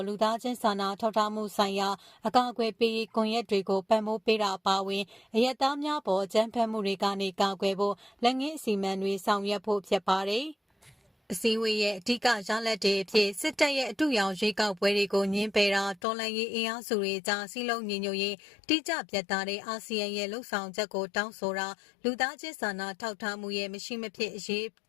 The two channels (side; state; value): right; drops out; at 16.0 s